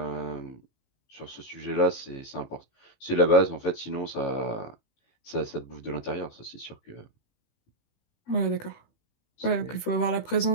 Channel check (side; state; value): right; late; 18 ms